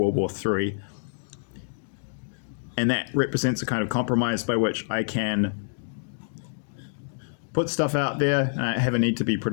War III. And that represents a kind of compromise by which I can put stuff out there, and I have a need to be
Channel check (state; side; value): silent; right; digital silence